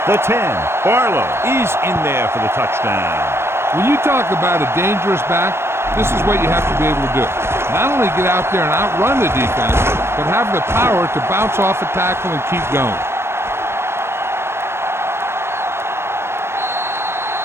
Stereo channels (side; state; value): left; late; 0.12 ms